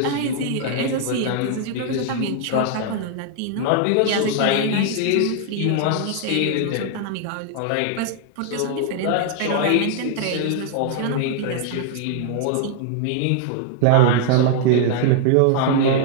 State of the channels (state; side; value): different; both; correlation 0.00